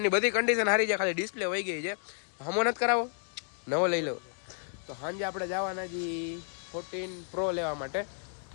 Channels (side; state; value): right; silent; digital silence